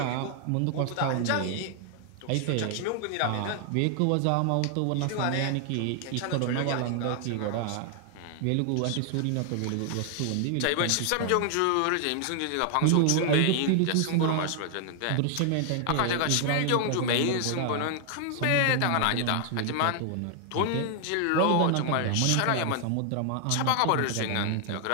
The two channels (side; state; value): both; different; correlation 0.00